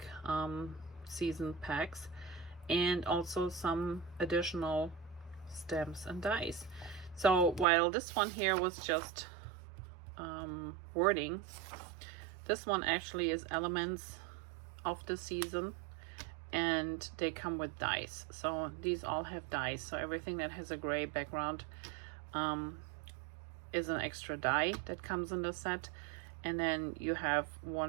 season packs, and also some additional stamps and dies. So while this one here was just wording, this one actually is elements of the season, and they come with dies. So these all have dies. So everything that has a gray background is an extra die that comes in the set. And then you have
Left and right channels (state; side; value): drops out; left; at 7.7 s